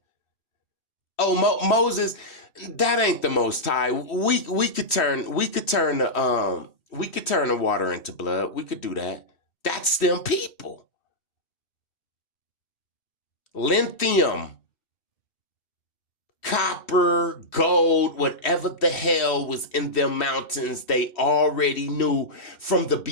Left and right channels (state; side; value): late; right; 3.1 ms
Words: Oh, Moses, that ain't the Most High. We could turn the water into blood. We could do that. That's them people. Lithium, copper, gold, whatever the hell was in them mountains, they already knew from the